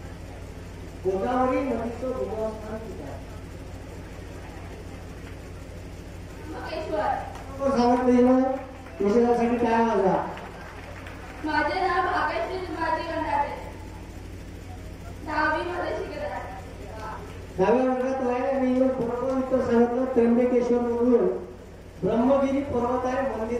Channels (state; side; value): identical; both; correlation 1.00